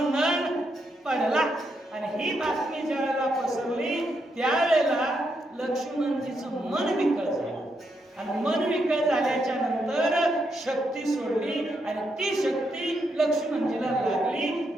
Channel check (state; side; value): normal; both; correlation 0.80